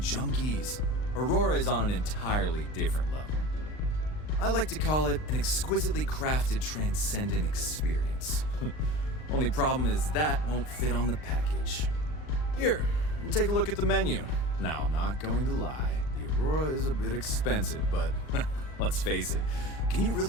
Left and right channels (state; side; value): late; right; 39 ms